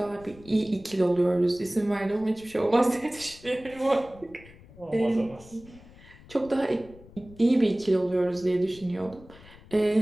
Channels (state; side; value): noise; left; rumble, 22 dB below the sound